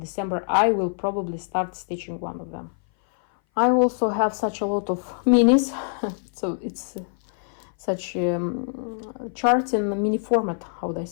I will probably start stitching one of them. I also have such a lot of minis, so it's such charts in the mini format, how would I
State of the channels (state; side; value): silent; right; 59 dB below the other